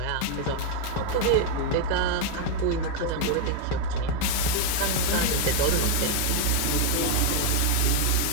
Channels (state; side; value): different; both; correlation 0.01